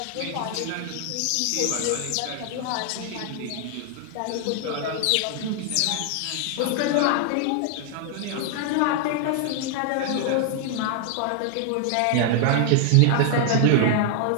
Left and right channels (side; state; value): both; different; correlation 0.00